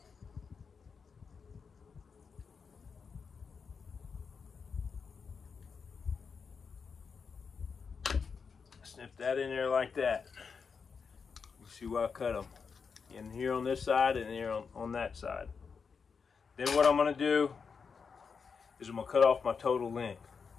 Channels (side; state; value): right; quieter; 5.7 dB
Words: Snip that in there like that. You see where I cut them. In here on this side and here on that side. Then what I'm going to do is I'm going to cut off my total length.